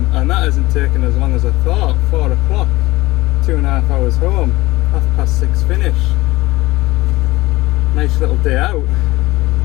and that hasn't taken as long as I thought. 4 o'clock, 2.5 hours home, 6:30 finish. Nice little day out.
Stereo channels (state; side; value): quieter; right; 19.4 dB